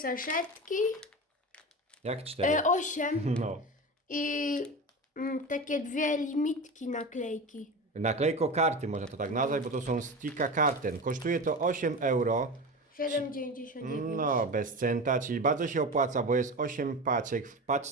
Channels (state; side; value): normal; both; correlation 0.27